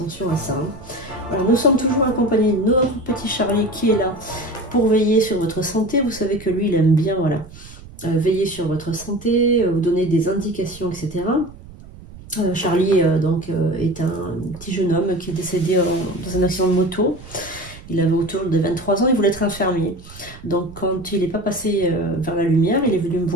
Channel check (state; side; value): noise; right; rumble, 18 dB below the sound